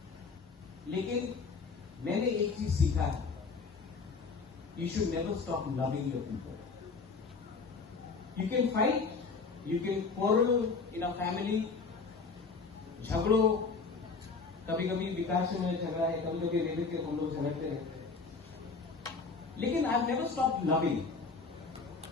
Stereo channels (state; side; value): quieter; right; 4.6 dB